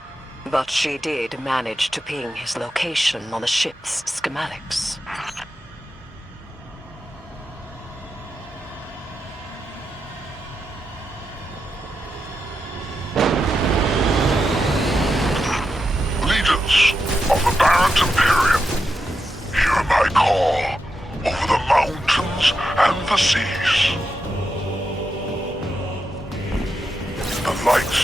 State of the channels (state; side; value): normal; both; correlation 0.86